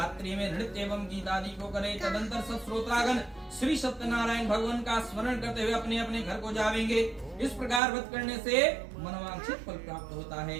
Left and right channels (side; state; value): left; drops out; at 7.8 s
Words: में नृत्य एवं गीत आदि को करे। तदंतर सब श्रोतागण श्री सत्यनारायण भगवान का स्मरण करते हुए अपने अपने घर को जावेंगे। इस प्रकार व्रत करने से मनोवांछित फल प्राप्त होता है।